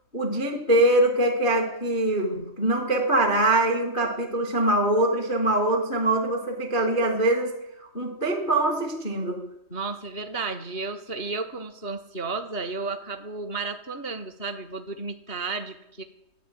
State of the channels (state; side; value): late; right; 3.2 ms